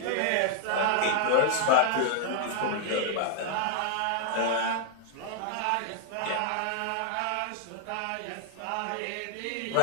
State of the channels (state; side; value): different; both; correlation 0.00